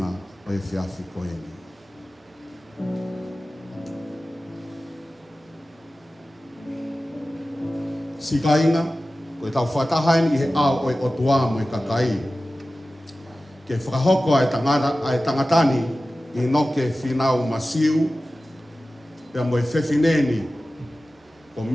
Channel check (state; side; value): normal; both; correlation 0.95